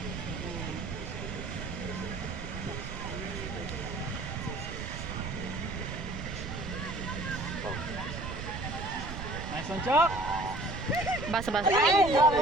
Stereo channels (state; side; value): noise; right; rumble, 7 dB below the sound